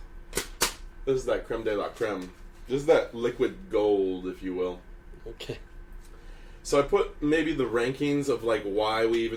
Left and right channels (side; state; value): both; identical; correlation 1.00